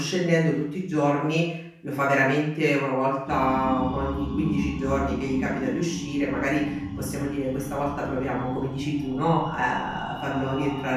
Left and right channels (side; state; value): both; identical; correlation 1.00